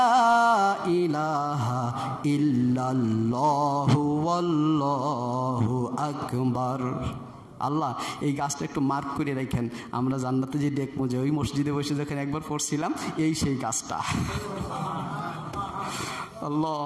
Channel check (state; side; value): identical; both; correlation 1.00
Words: ইলাহা ইল্লাল্লাহু ওয়াল্লাহু আকবার। আল্লাহ এই গাছটা একটু মার্ক করে রাখেন, আমরা জান্নাতে যে দেখবো যে ওই মসজিদে বসে যখন একবার পড়ছিলাম এই সেই গাছটা। আল্লাহ,